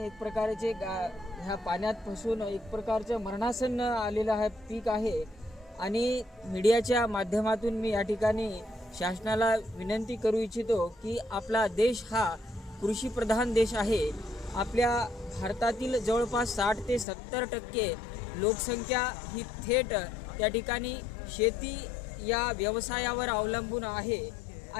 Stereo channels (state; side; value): drops out; right; at 17.1 s